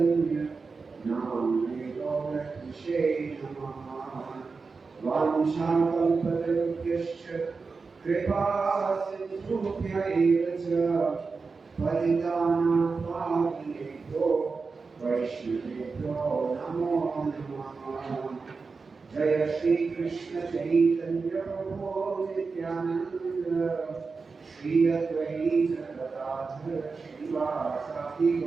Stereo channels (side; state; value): left; quieter; 4.5 dB